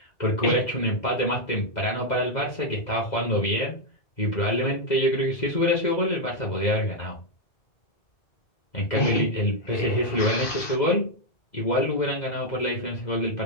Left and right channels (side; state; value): right; late; 2.0 ms